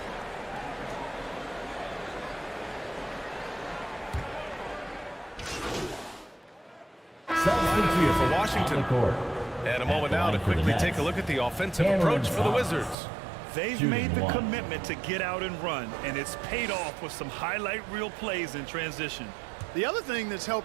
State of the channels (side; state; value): left; drops out; at 13.0 s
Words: Here for Washington. And a moment now to quickly take a look at the offensive approach for the Wizards. They've made the commitment to get out and run, and it's paid off with some highlight reel plays in transition. The other thing that's